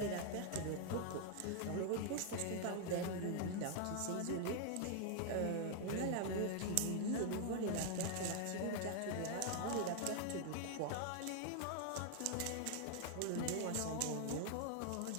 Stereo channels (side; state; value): both; different; correlation 0.00